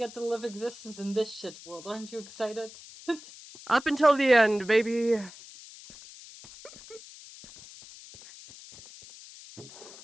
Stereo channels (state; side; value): noise; left; hiss, 18 dB below the sound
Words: to live existence in this shit world. Aren't you excited? Up until the end, baby.